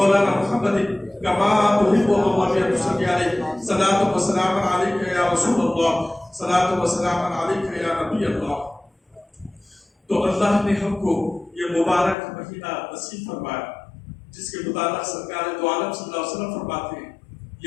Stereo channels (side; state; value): right; drops out; at 12.2 s